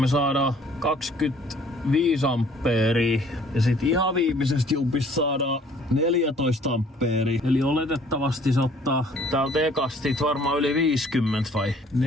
saadaan 25 ampeeria. Ja sit ihan viimeisestä jumpista saadaan 14 ampeeria. Eli oletettavasti se ottaa täältä ekasti varmaan yli 50 vai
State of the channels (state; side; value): normal; both; correlation 0.57